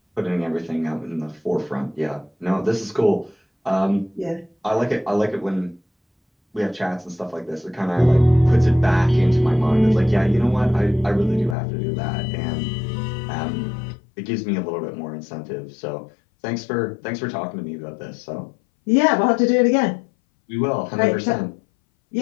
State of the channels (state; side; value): drops out; right; at 11.6 s